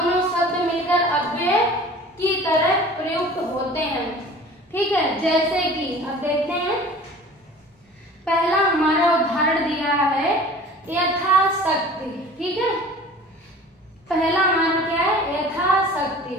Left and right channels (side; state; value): both; normal; correlation 0.44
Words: शब्द मिलकर अव्यय की तरह प्रयुक्त होते हैं। ठीक है, जैसे कि अब देखते हैं, पहला हमारा उदाहरण दिया है यथाशक्ति, ठीक है। पहला हमारा क्या है, यथाशक्ति,